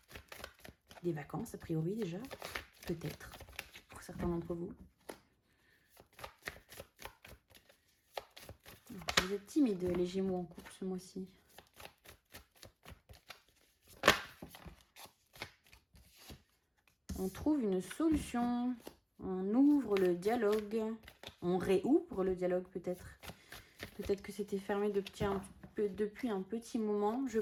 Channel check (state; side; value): identical; both; correlation 1.00